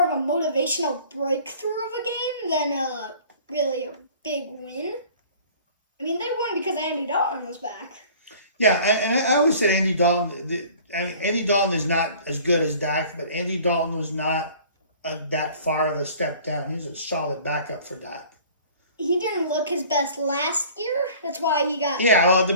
of a motivational breakthrough of a game than really a big win. I mean, they won because Andy Dalton was back. Yeah, and I always said Andy Dalton. Andy Dalton is not as good as Dak, but Andy Dalton was not that far of a step down. He was a solid backup for Dak. He didn't look his best last year. That's why he got the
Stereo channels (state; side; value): inverted; both; correlation -0.49